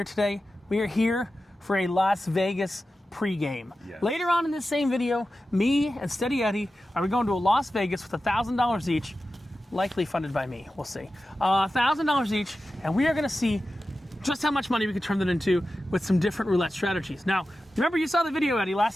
today? We are here for a Las Vegas pregame. Yes. Later on in this same video, me and Steady Eddie are going to Las Vegas with $1,000 each, likely funded by me. We'll see. $1,000 each, and we are going to see just how much money we could turn that into with some different roulette strategies. Now, remember you saw the video, Eddie,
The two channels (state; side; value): normal; both; correlation 0.93